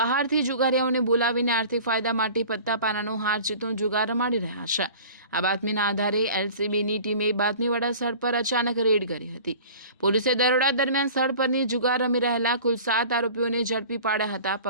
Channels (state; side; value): inverted; both; correlation -0.43